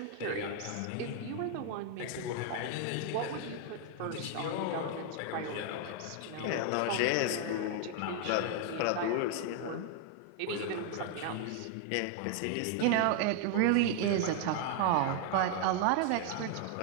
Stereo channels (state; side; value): different; both; correlation 0.00